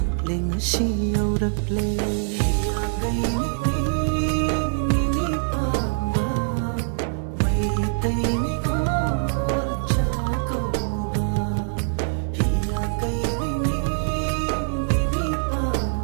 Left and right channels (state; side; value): silent; left; 56 dB below the other